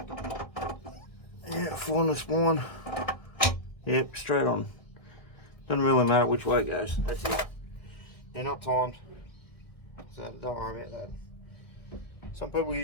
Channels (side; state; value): right; late; 1.8 ms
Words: Yeah, find the spine. Yep, straight on. Doesn't really matter which way it goes. That's it. They're not timed, so don't worry about that. Some people